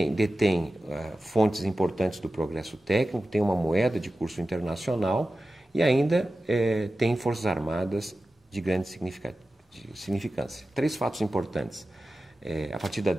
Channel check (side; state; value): both; normal; correlation 0.94